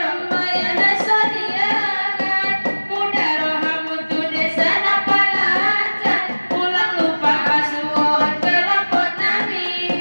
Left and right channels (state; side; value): inverted; both; correlation -1.00